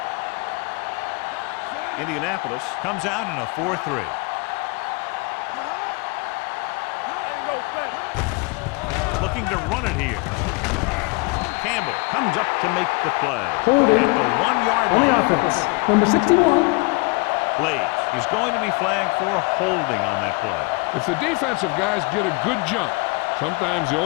Indianapolis comes out in a 4-3. Looking to run it here. Campbell comes up to make the play. At the 1-yard line. Number 61. Blades. He's going to be flagged for holding on that play. If the defensive guys get a good jump, sometimes the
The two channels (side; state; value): right; quieter; 27.9 dB